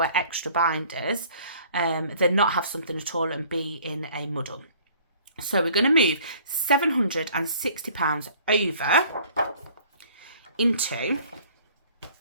extra binders than not have something at all and be in a muddle. So we're going to move £760 over into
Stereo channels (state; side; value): inverted; both; correlation -0.53